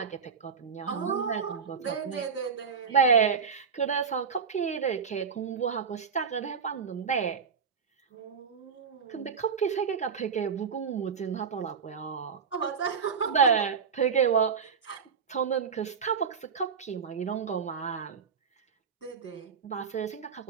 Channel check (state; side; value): quieter; left; 6.2 dB